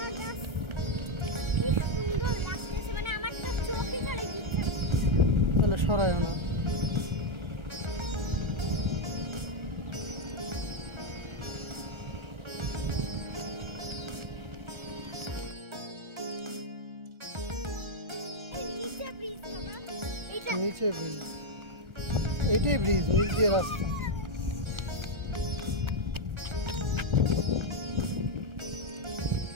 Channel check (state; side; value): late; left; 1.3 ms